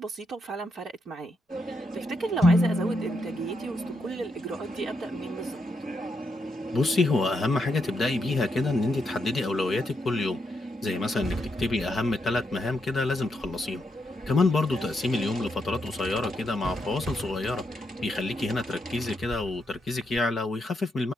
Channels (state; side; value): normal; both; correlation 0.81